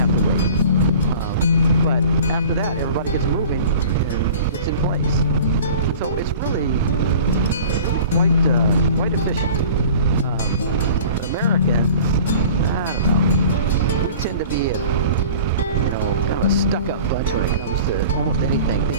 wait. But after that, everybody gets moving and it's in place. So it's really quite efficient. Americans, I don't know, we tend to be kind of a stuck-up bunch when it comes to almost anything,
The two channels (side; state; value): both; inverted; correlation -0.42